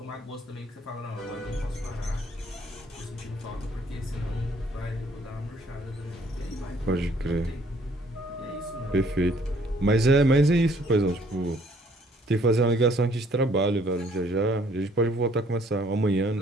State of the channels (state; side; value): normal; both; correlation 0.62